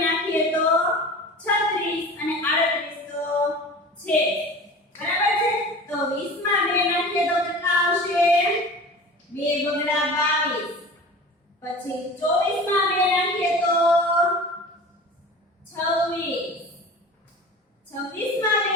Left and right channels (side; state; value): both; normal; correlation 0.38